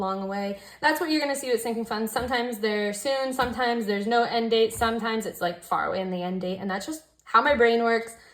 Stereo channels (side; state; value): both; identical; correlation 1.00